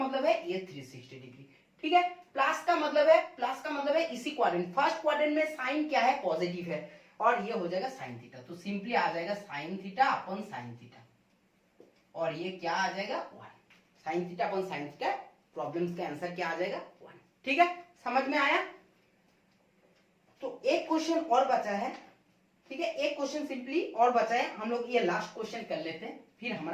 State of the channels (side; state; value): both; identical; correlation 1.00